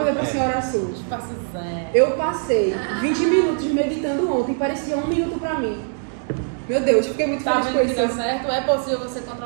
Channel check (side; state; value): left; silent; 64 dB below the other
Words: para a senhora Sul. espaço zen. Eu passei 20 minutos meditando ontem, parecia 1 minuto para mim. Meu Deus, fiquei muito Tá feliz com vendo que dá isso. certo? É possível você